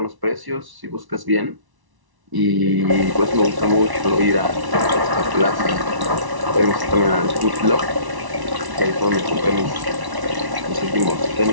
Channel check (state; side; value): late; left; 1.1 ms